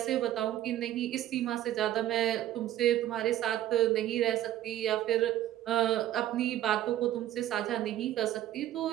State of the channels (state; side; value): quieter; left; 12.8 dB